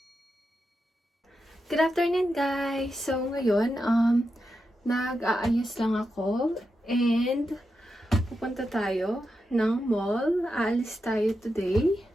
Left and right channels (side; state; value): both; normal; correlation 0.88